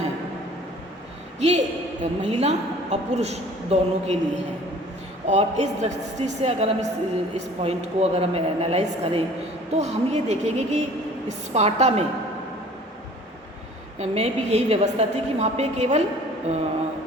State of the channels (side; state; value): both; normal; correlation 0.49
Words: ये महिला और पुरुष दोनों के लिए है। और इस दृष्टि से अगर हम इस पॉइंट को अगर हम एनालाइज करें तो हम ये देखेंगे कि स्पार्टा में भी यही व्यवस्था थी कि वहाँ पे केवल